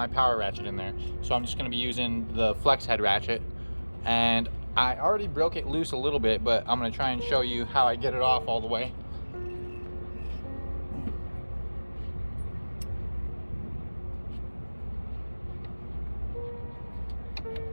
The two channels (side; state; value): both; inverted; correlation -1.00